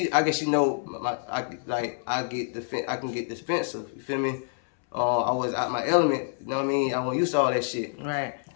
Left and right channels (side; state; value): right; silent; 60 dB below the other